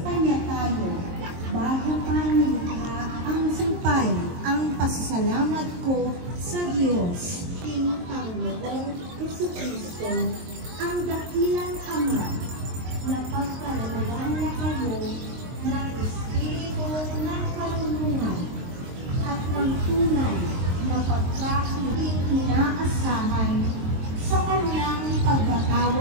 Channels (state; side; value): late; left; 23 ms